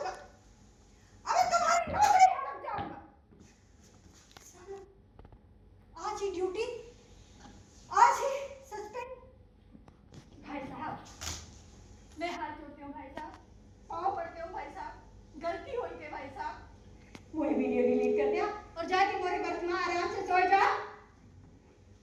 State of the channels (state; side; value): identical; both; correlation 1.00